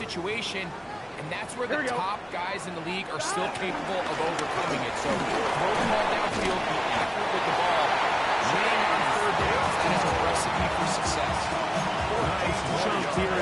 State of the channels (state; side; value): identical; both; correlation 1.00